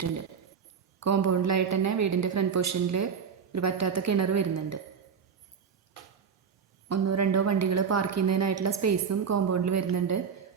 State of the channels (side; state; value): left; quieter; 6.6 dB